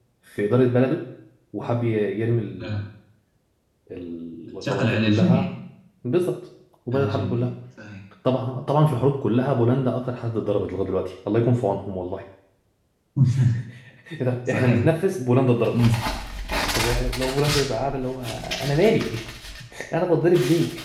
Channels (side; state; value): both; identical; correlation 1.00